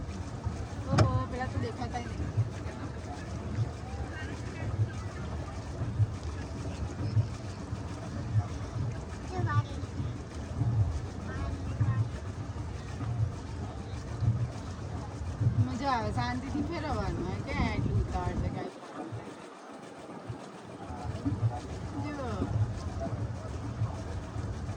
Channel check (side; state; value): both; identical; correlation 1.00